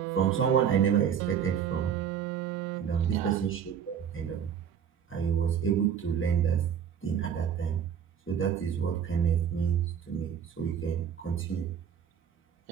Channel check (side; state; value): left; quieter; 8.2 dB